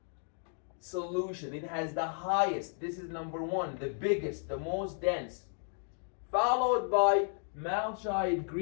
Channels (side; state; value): right; silent; 55 dB below the other